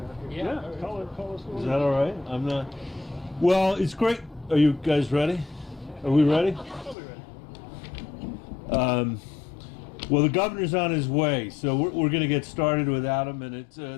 Yeah. Call us. Is that all right? I'm not. Well, it's great. Are you guys ready? Are we ready? I'll be ready. Well, the governor's on his way, so we're going to get started without him. And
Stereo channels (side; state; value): right; drops out; at 7.0 s